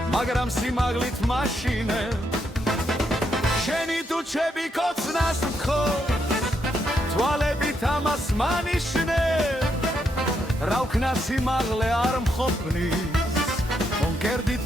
მაგრამ სიმაღლით მაშინე შენი თუჩები კოცნას ვქო თვალებით ამას მანიშნე რა ვქნა სიმაღლე არ მყოფნის კონკერდით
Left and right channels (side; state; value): both; normal; correlation 0.78